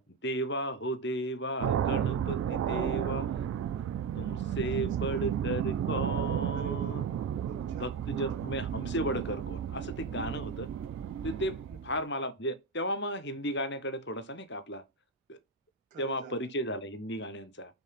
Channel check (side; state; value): left; quieter; 4.0 dB